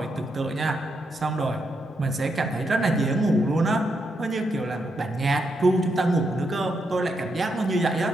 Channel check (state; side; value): normal; both; correlation 0.81